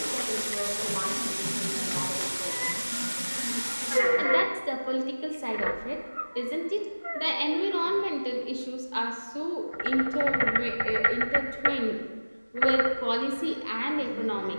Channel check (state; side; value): inverted; both; correlation -1.00